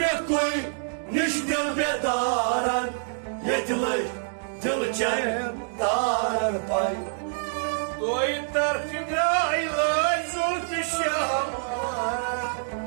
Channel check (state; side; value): silent; left; digital silence